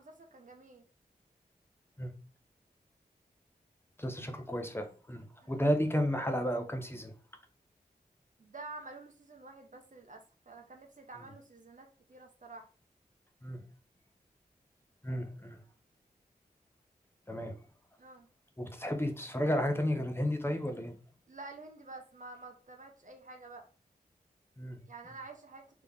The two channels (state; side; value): normal; both; correlation 0.84